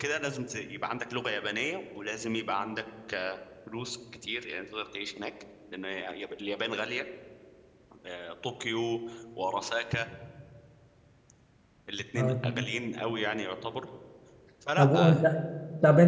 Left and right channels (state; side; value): identical; both; correlation 1.00